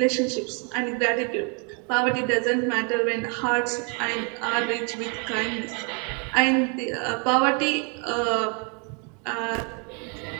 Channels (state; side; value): quieter; left; 36.5 dB